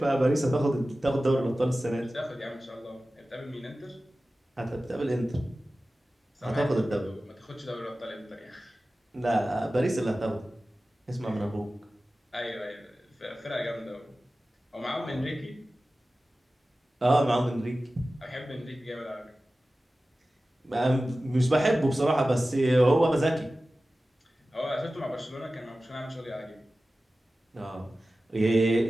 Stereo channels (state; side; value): normal; both; correlation 0.96